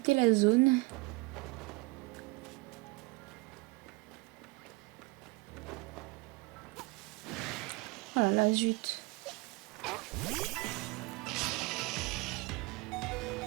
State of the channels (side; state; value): left; quieter; 24.8 dB